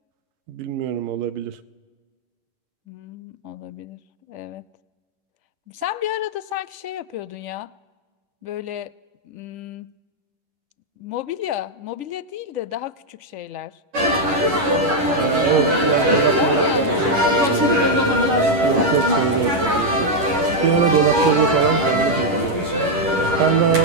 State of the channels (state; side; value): late; left; 11 ms